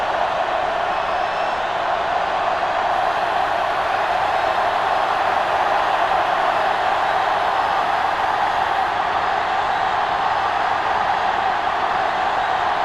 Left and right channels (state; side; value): noise; left; rumble, 20 dB below the sound